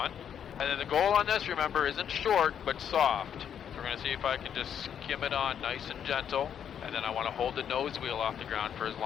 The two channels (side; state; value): right; quieter; 8.6 dB